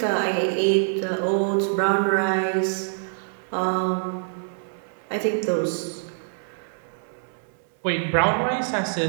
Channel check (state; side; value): silent; left; digital silence